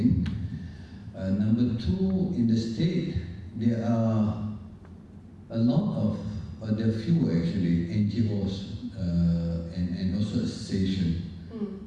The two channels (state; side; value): identical; both; correlation 1.00